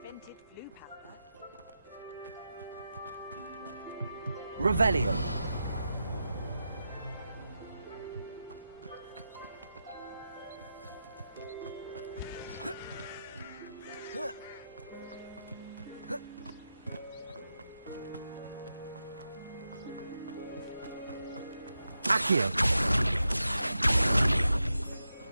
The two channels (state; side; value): inverted; both; correlation -0.88